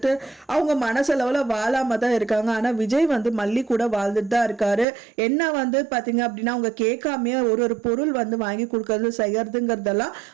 அவங்க மனசளவுல வாழாம தான் இருக்காங்க. ஆனா விஜய் மல்லி கூட வாழ்ந்துட்டு தான் இருக்காரு. என்ன பாத்தீங்க அப்படின்னா அவங்க கேட்காமையே ஒரு பொருள் வாங்கி கொடுக்கறது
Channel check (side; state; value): left; drops out; at 4.9 s